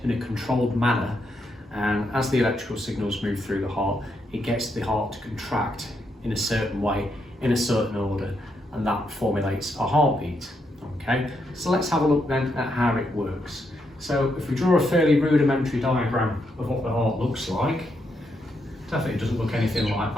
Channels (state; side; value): normal; both; correlation 0.80